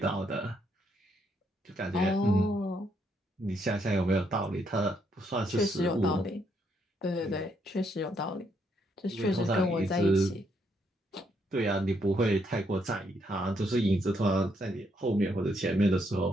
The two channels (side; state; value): both; normal; correlation 0.74